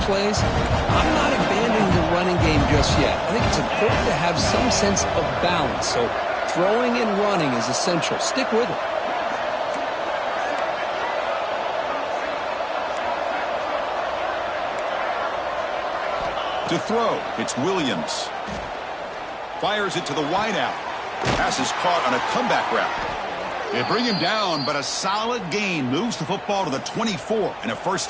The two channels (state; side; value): identical; both; correlation 1.00